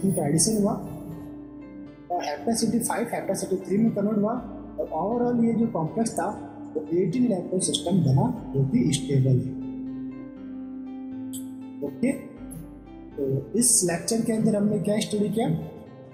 का एडिशन हुआ और हेपेसिटी 5 हेपेसिटी 3 में कन्वर्ट हुआ, और ओवरऑल ये जो कॉम्प्लेक्स था तो 18 इलेक्ट्रॉन सिस्टम बना जो कि स्टेबल है। ओके, तो इस लेक्चर के अंदर हमने क्या स्टडी किया,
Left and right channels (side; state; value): both; identical; correlation 1.00